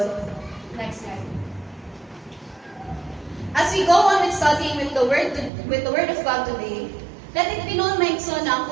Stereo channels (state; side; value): drops out; left; at 5.5 s